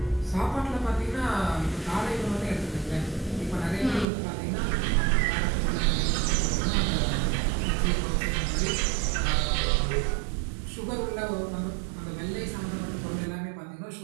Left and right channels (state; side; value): drops out; left; at 4.0 s